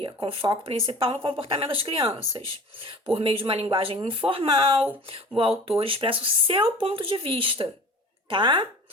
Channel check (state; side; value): normal; both; correlation 0.40